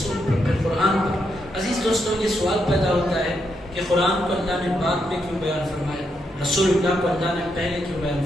پر، پھر قرآن پر۔ عزیز دوستوں، یہ سوال پیدا ہوتا ہے کہ قرآن کو اللہ نے بعد میں کیوں بیان فرمایا، رسول اللہ کو اللہ نے پہلے کیوں بیان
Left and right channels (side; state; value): both; normal; correlation 0.80